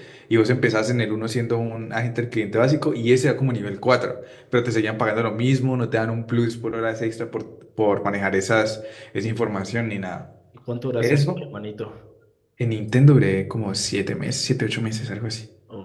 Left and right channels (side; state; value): both; identical; correlation 1.00